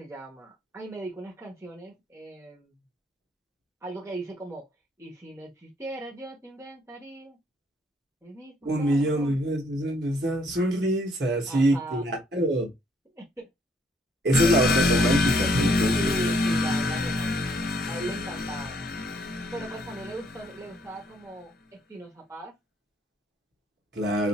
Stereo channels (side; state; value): both; normal; correlation 0.67